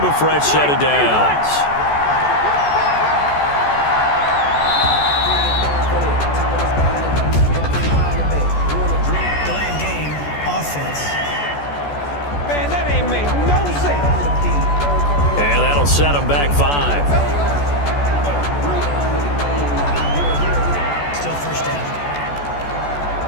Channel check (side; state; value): right; late; 14 ms